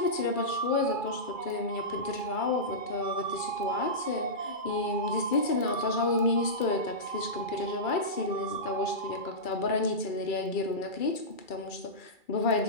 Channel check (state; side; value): late; right; 2.3 ms